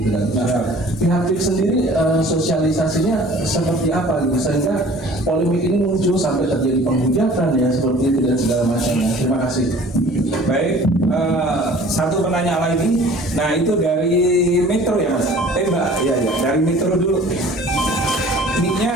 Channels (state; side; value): normal; both; correlation 0.48